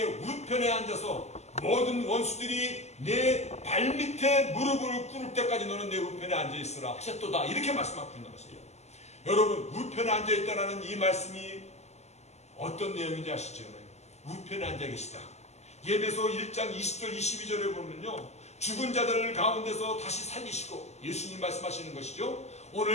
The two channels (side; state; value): right; late; 0.32 ms